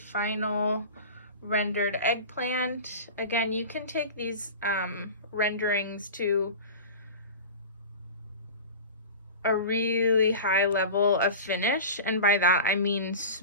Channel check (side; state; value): both; inverted; correlation -0.33